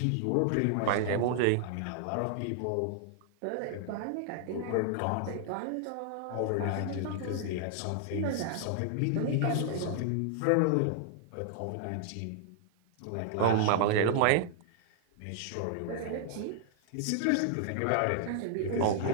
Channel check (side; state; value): both; different; correlation 0.00